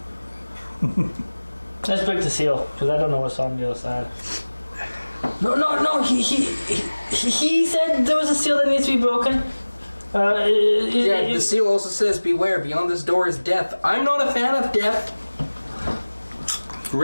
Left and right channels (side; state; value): both; inverted; correlation -1.00